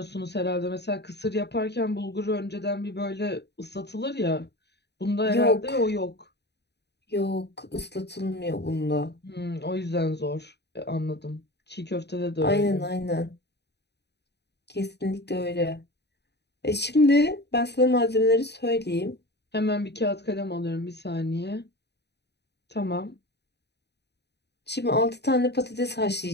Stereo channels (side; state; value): right; late; 0.49 ms